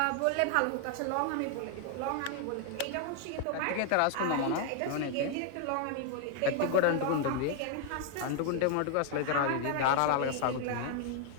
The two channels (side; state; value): both; different; correlation 0.00